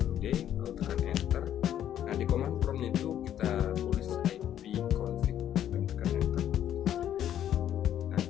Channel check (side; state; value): right; quieter; 10.8 dB